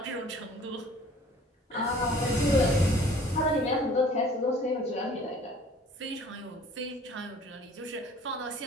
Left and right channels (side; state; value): both; normal; correlation 0.51